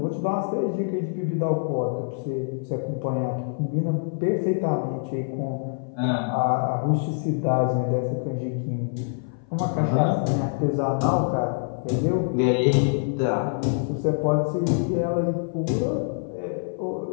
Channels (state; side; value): silent; right; 57 dB below the other